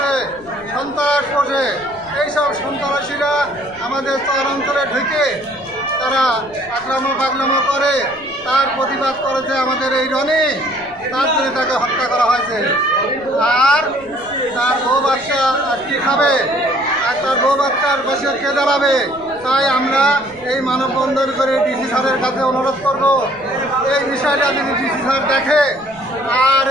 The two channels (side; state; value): left; noise; rumble, 24 dB below the sound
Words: সন্ত্রাস পোষে। এইসব সন্ত্রাসীরা আমাদের চরাঞ্চলে ঢুকে তারা আক্রমণ করে। তার প্রতিবাদ করেছে আমাদের এই রনি, তার জন্য তাকে হত্যা করা হয়েছে। আর তার বউ বাচ্চা আর কি খাবে, আর তার বউ বাচ্চার পাশে কে দাঁড়াবে? তাই আমরা এই মানববন্ধন করে ডিসি স্যারের কাছে অনুরোধ করব, এই বিষয়টা যদি ডিসি স্যার দেখে আর